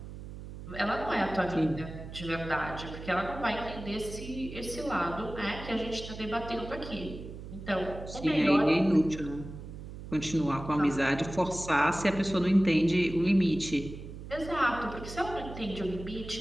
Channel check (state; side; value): noise; right; hum, 11 dB below the sound